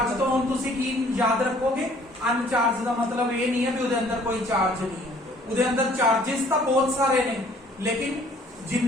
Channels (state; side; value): normal; both; correlation 0.57